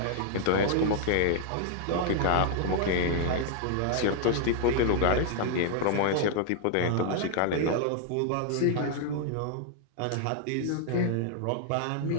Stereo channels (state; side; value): different; both; correlation 0.00